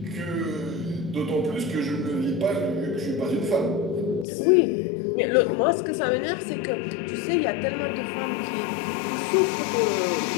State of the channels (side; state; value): right; drops out; at 4.2 s